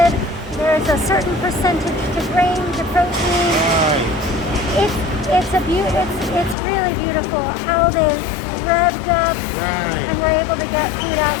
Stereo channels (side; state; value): right; drops out; at 6.6 s